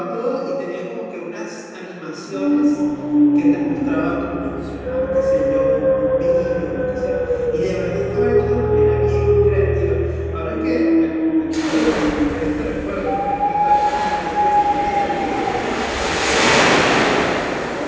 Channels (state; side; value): identical; both; correlation 1.00